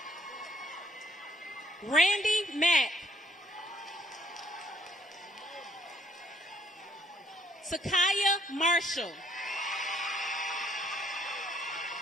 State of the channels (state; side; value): normal; both; correlation 0.66